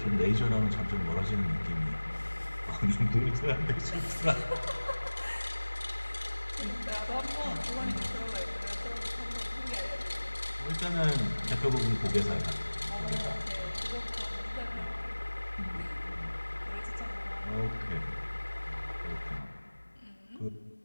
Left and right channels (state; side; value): inverted; both; correlation -1.00